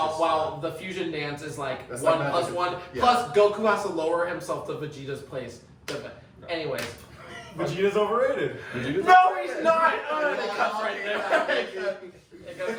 the fusion dance is like 1 plus 1 plus Goku has to lower himself to Vegeta's place. Anyways. Vegeta's overrated. No, he's not. It cuts right there. It goes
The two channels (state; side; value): identical; both; correlation 1.00